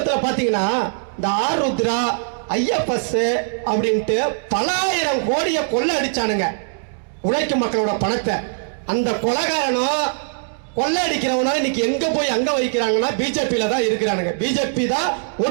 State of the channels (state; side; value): silent; left; digital silence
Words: பாத்தீங்கன்னா இந்த ஆருத்ரா ஐஎஃப்எஸ் அப்படின்ட்டு பல ஆயிரம் கோடியை கொள்ள அடிச்சானுங்க உழைக்கும் மக்களோட பணத்தை. அந்த கொலைகாரனும் கொள்ளை அடிக்கிறவனா இன்னைக்கு எங்க போய் அங்க வைக்கிறாங்கன்னா பிஜேபியில தான் இருக்கிறானுங்க. பிஜேபி தான்